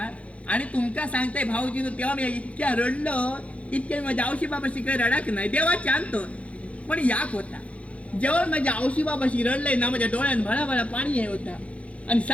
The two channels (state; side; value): late; right; 0.064 ms